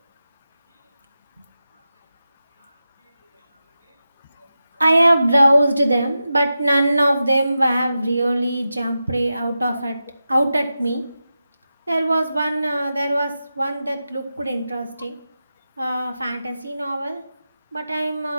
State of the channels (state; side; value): inverted; both; correlation -0.91